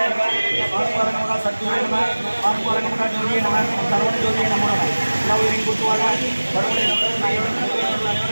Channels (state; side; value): inverted; both; correlation -1.00